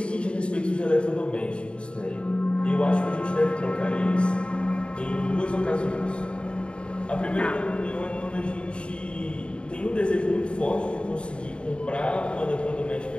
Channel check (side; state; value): right; late; 0.055 ms